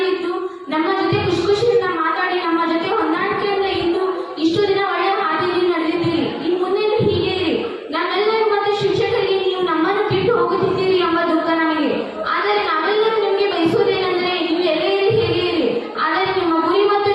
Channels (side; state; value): both; identical; correlation 1.00